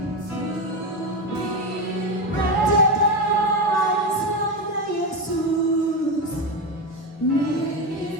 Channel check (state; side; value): normal; both; correlation 0.15